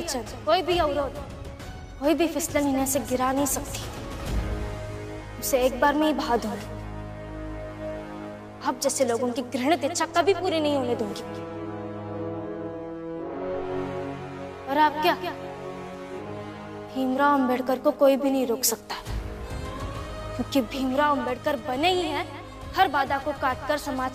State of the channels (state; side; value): identical; both; correlation 1.00